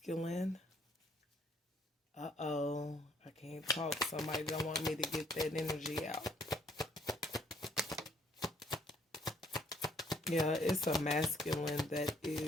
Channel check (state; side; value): normal; both; correlation 0.66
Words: I can't talk. Somebody don't want me to get that energy out. Yeah, it's a masculine that